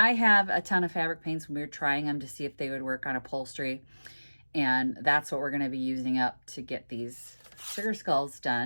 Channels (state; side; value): inverted; both; correlation -1.00